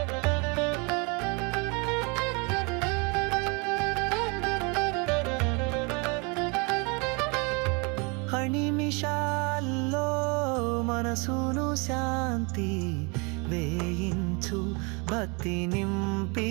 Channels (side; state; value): left; quieter; 31.0 dB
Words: నిమిషాల్లో మనసును శాంతి వేయించు, భక్తి నింపి